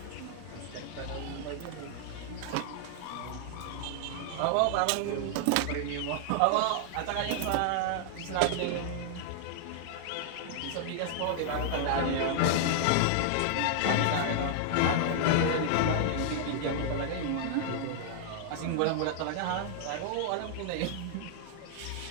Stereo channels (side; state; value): both; different; correlation -0.01